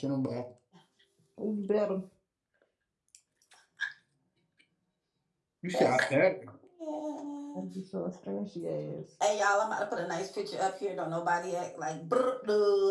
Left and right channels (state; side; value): identical; both; correlation 1.00